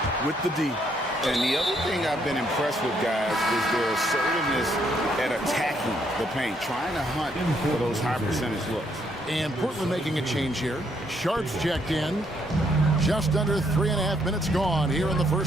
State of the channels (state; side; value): normal; both; correlation 0.72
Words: with the D. And the other thing I've been impressed with, guys, is their assertiveness at attacking the paint, trying to hunt for those high percentage looks. And Portland making a change here. Sharps checked in. Just under 3.5 minutes gone here in the